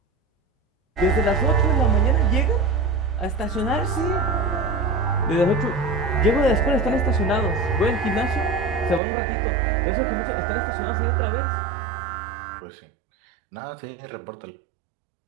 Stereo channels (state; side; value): drops out; left; at 9.0 s